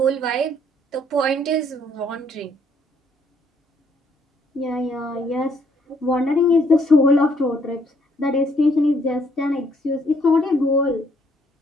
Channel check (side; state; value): both; normal; correlation 0.67